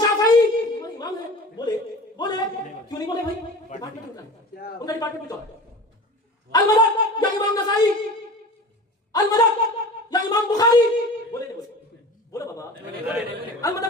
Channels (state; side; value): normal; both; correlation 0.37